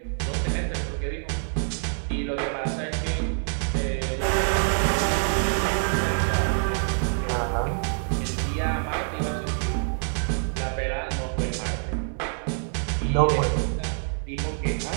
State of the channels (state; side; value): silent; left; digital silence